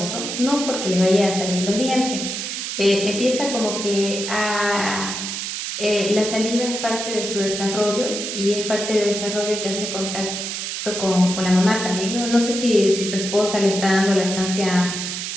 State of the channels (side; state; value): right; noise; hiss, 4 dB below the sound